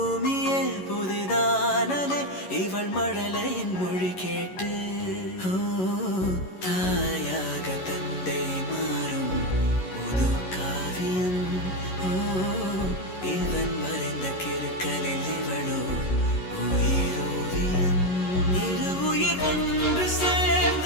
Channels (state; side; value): late; right; 11 ms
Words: புதிதானதே இவள் மழலையின் மொழி கேட்டு. தாயாக தந்தை மாறும் புது காவியம். இவன் மறைந்த கிறுக்கலில் இவளோ உயிரோவியம். இரு உயிர் ஒன்று